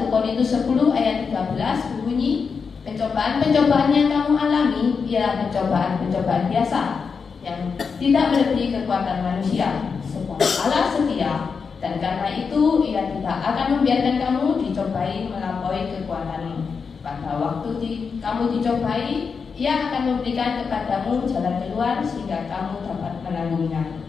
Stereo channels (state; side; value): quieter; right; 5.5 dB